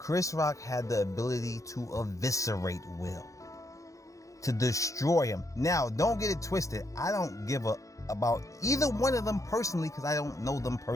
Rock had the ability to eviscerate Will, to destroy him. Now, don't get it twisted. I don't give a about either one of them personally because I don't know them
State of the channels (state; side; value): late; right; 0.16 ms